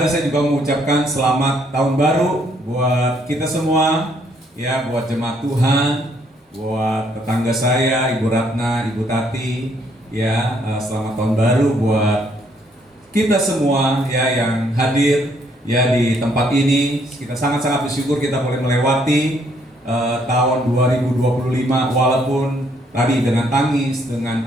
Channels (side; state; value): both; normal; correlation 0.68